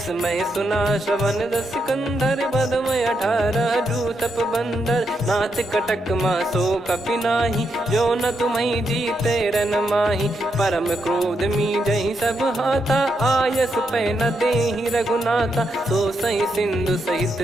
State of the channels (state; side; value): normal; both; correlation 0.81